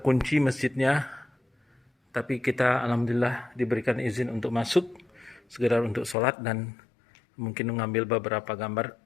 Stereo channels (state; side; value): drops out; right; at 6.2 s